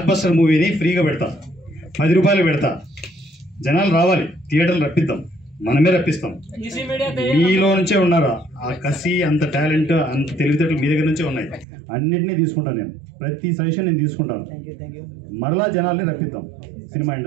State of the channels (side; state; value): left; drops out; at 11.7 s